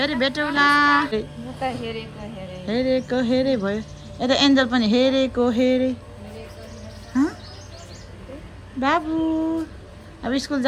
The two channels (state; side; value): identical; both; correlation 1.00